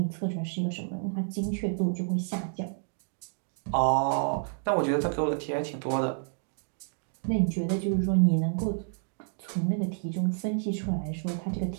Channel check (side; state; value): left; silent; 58 dB below the other